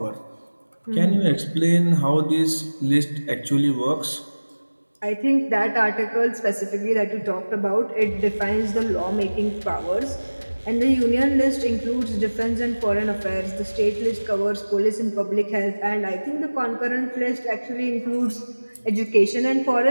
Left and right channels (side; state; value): both; inverted; correlation -1.00